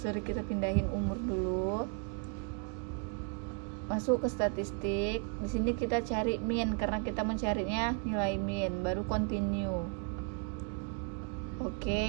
kita pindahin umur dulu. Masuk ke statistik. Di sini kita cari min karena kita mencarinya nilai min, baru continue.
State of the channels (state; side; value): quieter; left; 35.0 dB